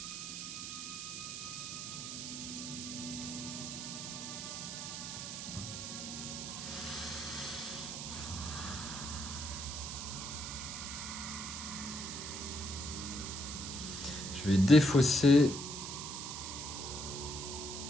Je vais défausser.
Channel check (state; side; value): noise; right; hiss, 6 dB below the sound